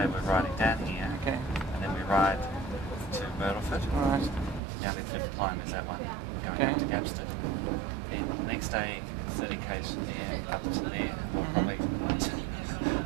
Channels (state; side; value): drops out; left; at 4.6 s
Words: we're riding down here, and then we ride to Myrtleford. Right. Down in Fifth Climb is that one, going up to Gapston. Then the next day, 30 k's from there, up to there. We'll probably